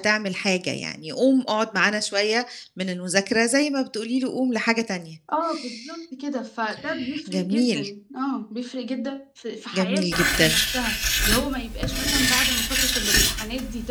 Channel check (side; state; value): both; identical; correlation 1.00